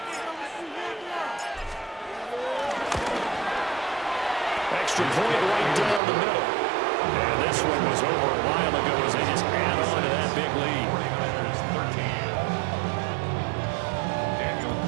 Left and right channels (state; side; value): drops out; left; at 6.0 s